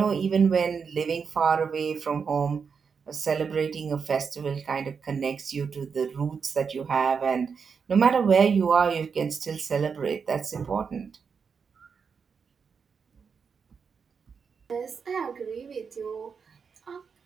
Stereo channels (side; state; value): left; quieter; 5.9 dB